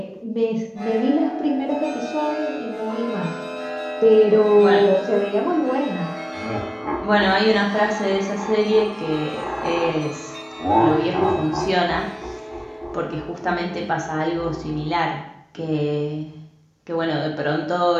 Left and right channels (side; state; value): both; identical; correlation 1.00